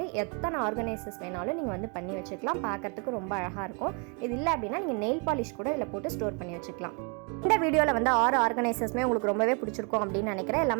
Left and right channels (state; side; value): quieter; left; 35.5 dB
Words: எத்தனை ஆர்கனைசர்ஸ் வேணாலும் நீங்கள் வந்து பண்ணி வச்சுக்கலாம். பார்க்குறதுக்கு ரொம்ப அழகாக இருக்கும். இது இல்லை அப்படின்னா நீங்கள் நெயில் பாலிஷ் கூட இதில் போட்டு ஸ்டோர் பண்ணி வச்சுக்கலாம். இந்த வீடியோவில் வந்து 6 ஆர்கனைசர்ஸுமே உங்களுக்கு ரொம்பவே பிடிச்சிருக்கும் அப்படின்னு நினைக்கிறேன்.